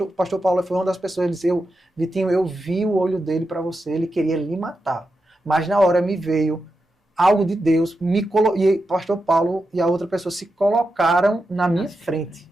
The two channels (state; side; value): normal; both; correlation 0.88